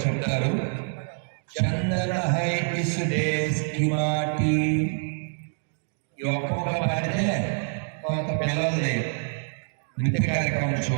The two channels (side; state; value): left; silent; 61 dB below the other